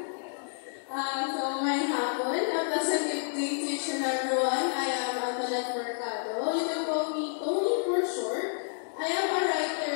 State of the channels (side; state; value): right; silent; digital silence